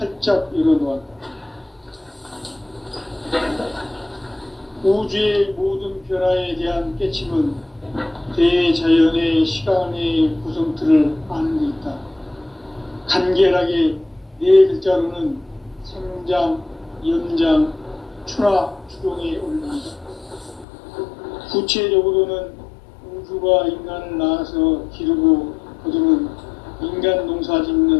열어놓았다. 우주의 모든 변화에 대한 깨침은 대자연의 시간의 구성틀을 아는 데 있다. 간결하게 네 글자로는 생장, 연장, 추나 추동에 올립니다. 구체적으로는 우주가 인간을 낳아서 기르고 거두는 인간 농사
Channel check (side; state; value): right; drops out; at 20.7 s